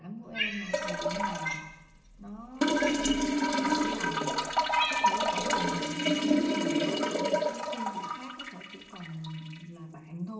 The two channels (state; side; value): identical; both; correlation 1.00